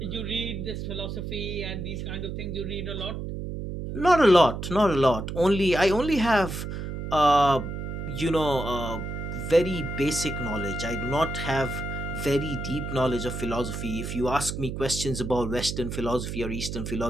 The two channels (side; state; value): right; noise; hum, 5 dB below the sound